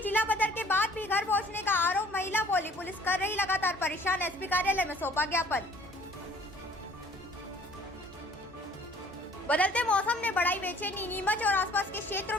जिला बदर के बाद भी घर पहुंचने का आरोप। महिला बोली पुलिस कर रही लगातार परेशान। एसपी कार्यालय में सौंपा ज्ञापन। बदलते मौसम ने बढ़ाई बेचैनी। नीमच और आसपास के क्षेत्रों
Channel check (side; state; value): both; normal; correlation 0.54